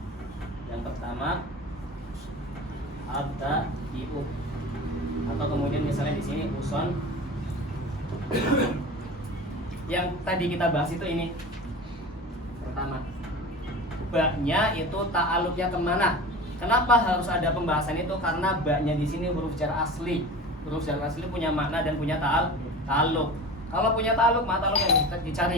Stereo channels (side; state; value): both; normal; correlation 0.34